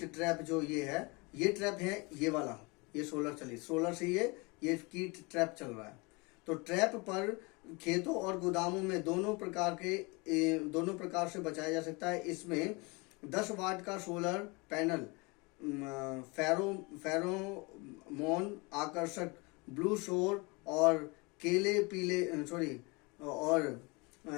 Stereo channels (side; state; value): right; quieter; 27.6 dB